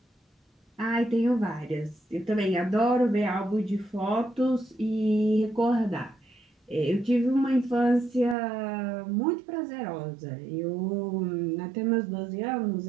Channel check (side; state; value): left; drops out; at 8.3 s